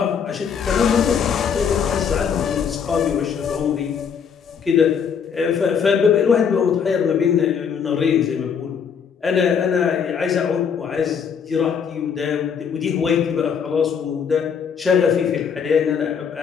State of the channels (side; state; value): right; quieter; 6.9 dB